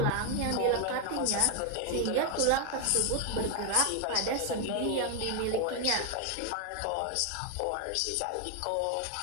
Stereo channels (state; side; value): different; both; correlation 0.00